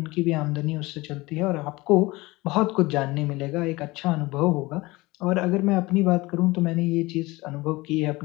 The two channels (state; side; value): quieter; right; 21.5 dB